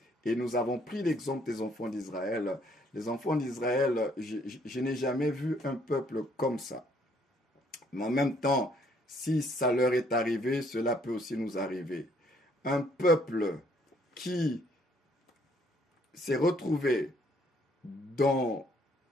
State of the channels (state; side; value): normal; both; correlation 0.65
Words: Et nous avons pris l'exemple des enfants d'Israël. Les enfants d'Israël, je n'ai jamais vu un peuple comme ça. Mais en même temps, si ça leur est arrivé, cela peut aussi nous arriver. Un peuple qui s'est retrouvé dans